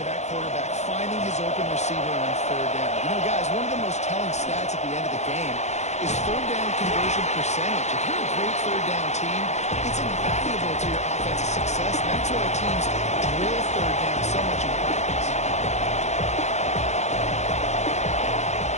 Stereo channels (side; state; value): right; late; 0.33 ms